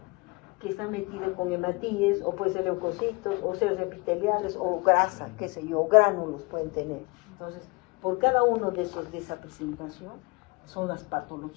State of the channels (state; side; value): quieter; right; 26.6 dB